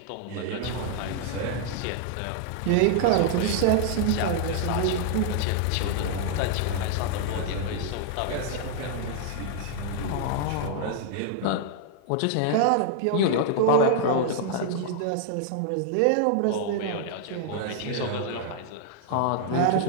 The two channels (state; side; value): different; both; correlation 0.00